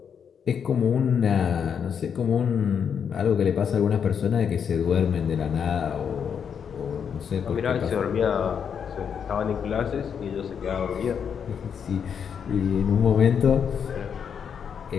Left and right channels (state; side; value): quieter; right; 7.4 dB